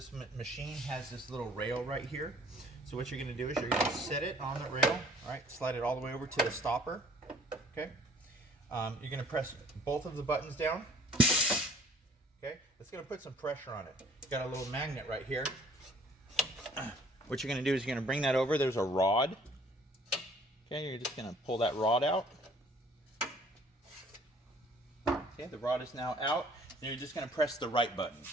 machine has this little rail right here. So what you're going to do is you're going to set it on the rail, all right, slide it all the way over to the stopper, okay. You're going to press both of the buttons down, okay. It's going to put some pressure on it. Got a little magnet right here. What you're going to do is you're going to bring that over. There's a rod, okay. You're just going to pull that rod out. Okay, the rod is now out, and you're just going to press the right button.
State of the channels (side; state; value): both; normal; correlation 0.55